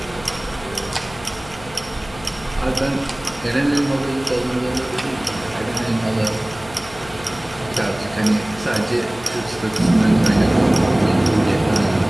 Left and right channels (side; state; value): left; noise; hum, 19 dB below the sound